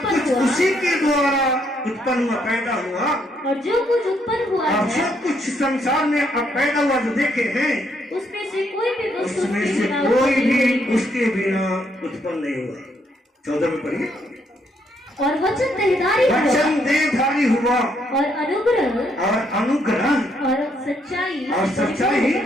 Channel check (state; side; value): normal; both; correlation 0.73